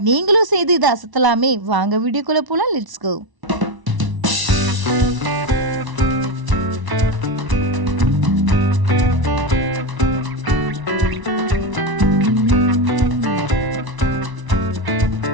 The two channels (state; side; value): late; left; 1.0 ms